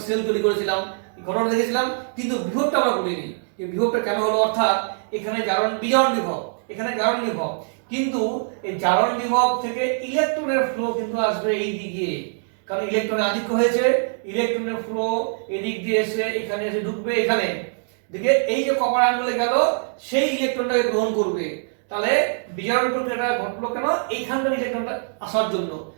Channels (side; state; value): left; silent; digital silence